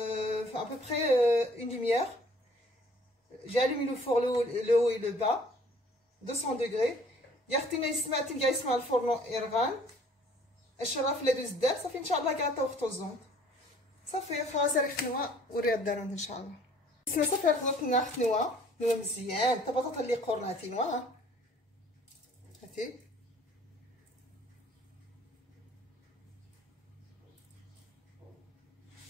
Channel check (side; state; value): both; normal; correlation 0.55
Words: à peu près une demi-heure. J'ai allumé le four le haut et le bas 200 degrés. يختينا يسمع تنقع يسمع الفرن يرغان الشراف اللي دوز دار صافي ان شاء الله كاع طوختو الزون صافي خلاص راه خنوا وريها الدارون ان شاء الله. السما صافي خضرتنا خنوا مزيان حتى بطاطا اللي قرناتي نوا هاتي